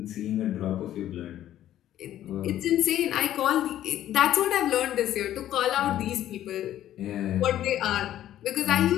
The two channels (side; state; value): right; quieter; 12.3 dB